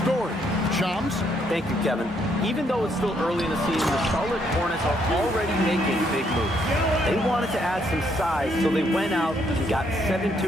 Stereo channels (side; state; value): both; normal; correlation 0.72